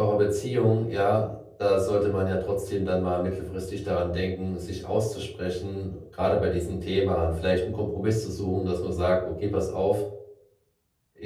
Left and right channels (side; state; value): both; identical; correlation 1.00